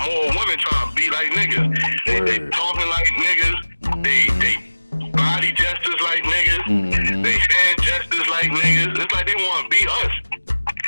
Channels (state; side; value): inverted; both; correlation -1.00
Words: more women trying to be like niggas. They talking like niggas. They body gestures like niggas. They hand gestures like niggas. It's like they want to be us.